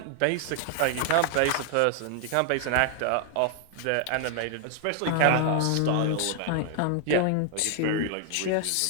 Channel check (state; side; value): different; both; correlation 0.00